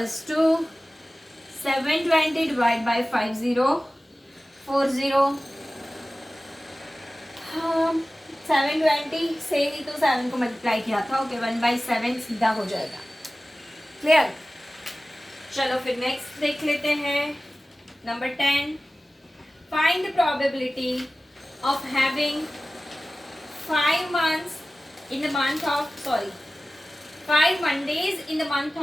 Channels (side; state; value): both; normal; correlation 0.97